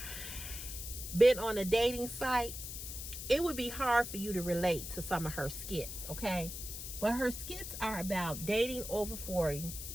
been on a dating site, it would be hard for you to relate to some of her skits, okay? But her skits are about dating over 40,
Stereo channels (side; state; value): left; noise; hiss, 8 dB below the sound